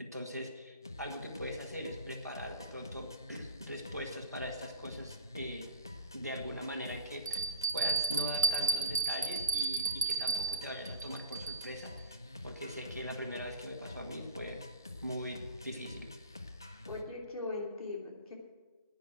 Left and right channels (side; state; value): both; inverted; correlation -0.36